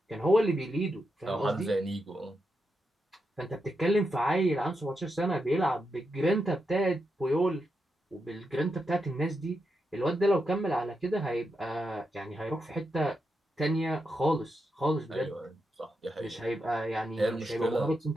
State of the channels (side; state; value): both; normal; correlation 0.85